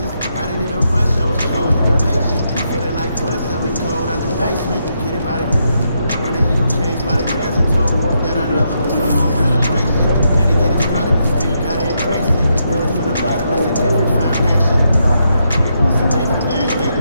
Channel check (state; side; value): inverted; both; correlation -0.80